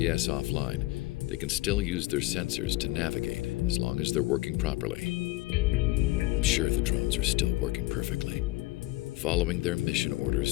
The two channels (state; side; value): quieter; right; 19.5 dB